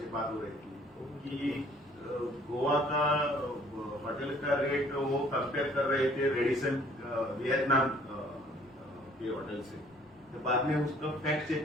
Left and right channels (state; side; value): normal; both; correlation 0.57